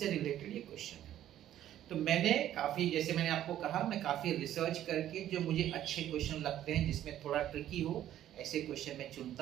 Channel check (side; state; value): left; quieter; 12.0 dB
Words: रिलेटेड ये क्वेश्चन है। तो मैंने काफी, जैसे मैंने आपको कहा, मैं काफी रिसर्च करके जो मुझे अच्छे क्वेश्चन लगते हैं जिसमें थोड़ा ट्रिकी हो, ऐसे क्वेश्चन मैं